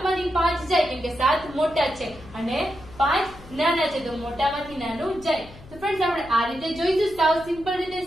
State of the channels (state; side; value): noise; left; hum, 19 dB below the sound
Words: માંથી 5 જાય કેમ કે 7 મોટા છે અને 5 નાના છે. તો મોટામાંથી નાનું જાય. તો ફ્રેન્ડ્સ, આપણે આ રીતે જોઈશું સાવ સિમ્પલ રીતે.